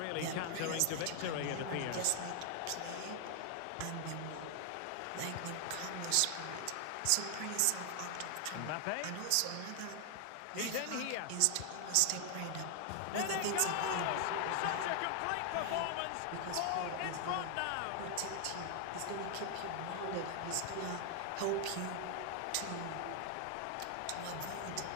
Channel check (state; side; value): different; both; correlation 0.00